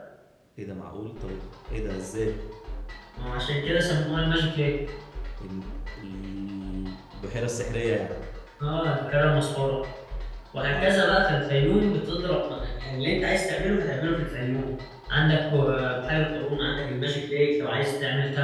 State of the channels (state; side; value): identical; both; correlation 1.00